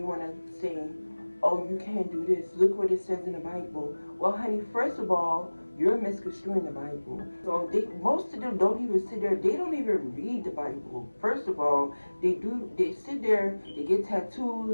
want to say, oh, you can't do this. Look what it says in the Bible. Well, honey, first of all, you're misconstruing the Bible. So most of them don't even sit there. They don't even read the Bible. First of all, they sit there, they get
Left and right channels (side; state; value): both; inverted; correlation -1.00